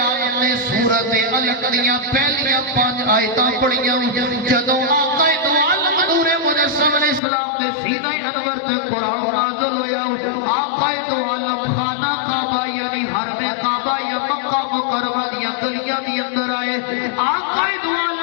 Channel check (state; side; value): drops out; right; at 7.2 s